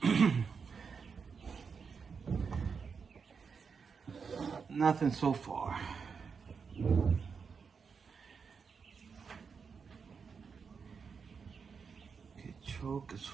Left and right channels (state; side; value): quieter; left; 5.7 dB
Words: Nothing so far. Okay, choke is